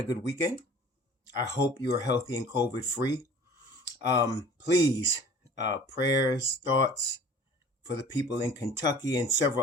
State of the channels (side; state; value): both; normal; correlation 0.46